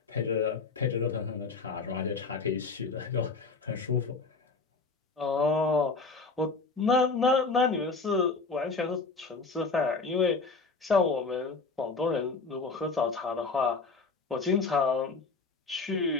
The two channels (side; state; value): right; quieter; 4.2 dB